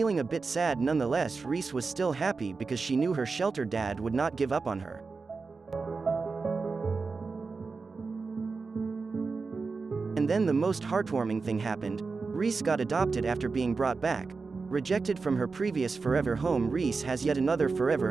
a bit sad nonetheless, Reece was still happy because she knew her shelter dad would not give up on her. And then the most heartwarming thing happened. Reece got adopted after being brought back. Rejected from her previous forever home, Reece has yet another forever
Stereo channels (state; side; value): quieter; left; 4.4 dB